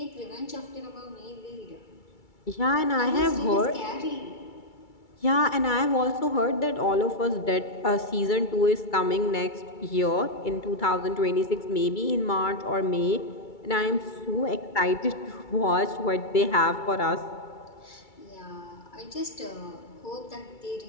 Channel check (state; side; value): late; right; 2.3 ms